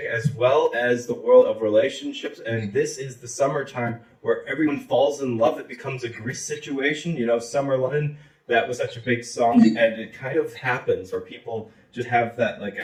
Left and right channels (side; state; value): both; identical; correlation 1.00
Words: as well as the world of relationships, and this is the summertime where everyone falls in love. It becomes a Grease situation, you know, Summer Lovin', that was such a big song, and it kind of happens where people just have that like